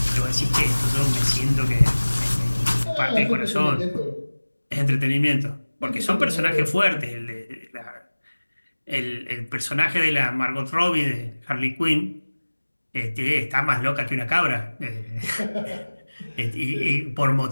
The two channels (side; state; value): both; inverted; correlation -1.00